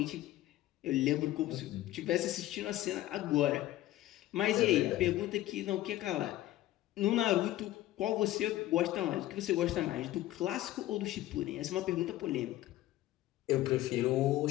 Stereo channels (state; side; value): quieter; right; 15.2 dB